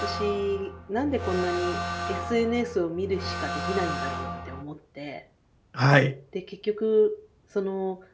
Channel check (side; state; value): both; identical; correlation 1.00